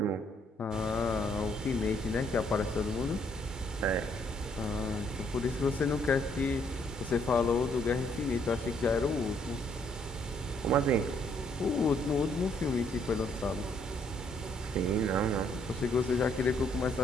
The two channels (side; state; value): both; normal; correlation 0.68